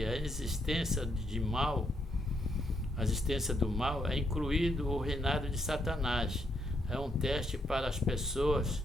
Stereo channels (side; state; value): both; normal; correlation 0.77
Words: a existência do mal é incluído o reinado de Satanás. É um teste para as pessoas,